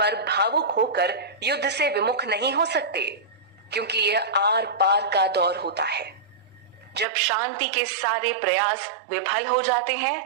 भावुक होकर युद्ध से विमुख नहीं हो सकते, क्योंकि यह आर पार का दौर होता है। जब शांति के सारे प्रयास विफल हो जाते हैं,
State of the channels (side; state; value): left; drops out; at 7.1 s